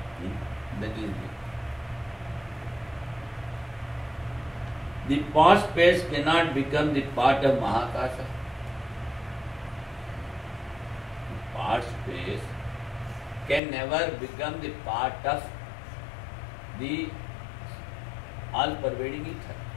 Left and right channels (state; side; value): drops out; right; at 13.6 s